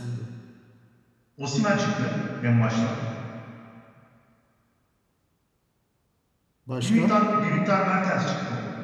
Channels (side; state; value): both; identical; correlation 1.00